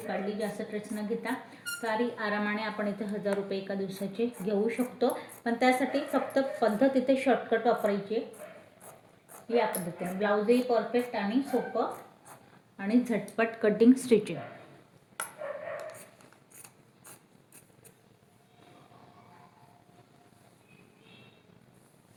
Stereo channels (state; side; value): identical; both; correlation 1.00